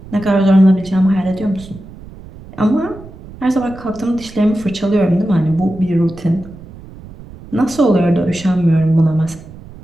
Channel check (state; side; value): noise; right; rumble, 18 dB below the sound